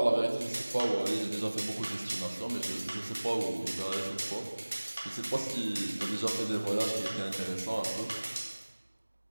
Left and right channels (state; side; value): inverted; both; correlation -1.00